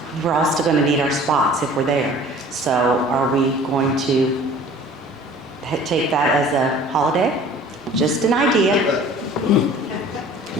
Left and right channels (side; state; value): both; normal; correlation 0.47